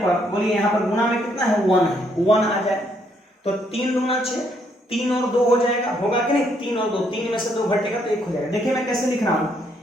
बोलिए यहाँ पर गुना में कितना है, 1 है, 1 आ जाए तो 3 दूना 6, 3 और 2 हो जाएगा, होगा कि नहीं, 3 और 2, 3 में से 2 घटेगा तो 1 हो जाएगा। देखिए मैं कैसे लिख रहा हूं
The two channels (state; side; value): normal; both; correlation 0.71